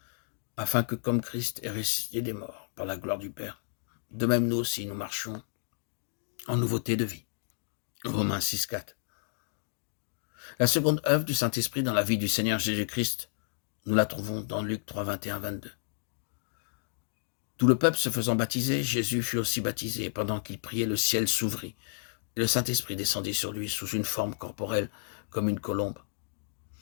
afin que comme Christ est ressuscité des morts par la gloire du Père, de même nous aussi nous marchions en nouveauté de vie. Romains 6, 4. La seconde œuvre du Saint-Esprit dans la vie du Seigneur Jésus-Christ, nous la trouvons dans Luc 3, 21, 22. Tout le peuple se faisant baptiser, Jésus fut aussi baptisé, et pendant qu'il priait, le ciel s'ouvrit, et le Saint-Esprit descendit sur lui sous une forme corporelle comme une colombe.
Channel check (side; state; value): right; silent; digital silence